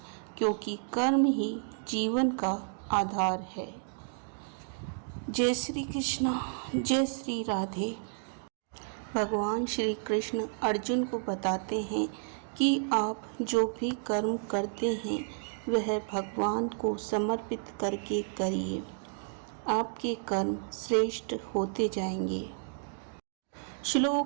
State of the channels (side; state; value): left; silent; digital silence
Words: क्योंकि कर्म ही जीवन का आधार है। जय श्री कृष्ण, जय श्री राधे। भगवान श्री कृष्ण अर्जुन को बताते हैं कि आप जो भी कर्म करते हैं वह भगवान को समर्पित करके करिए, आपके कर्म श्रेष्ठ होते जाएंगे।